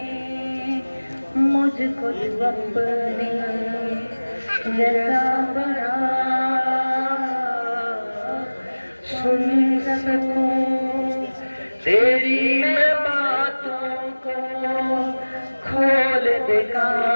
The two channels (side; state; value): both; inverted; correlation -1.00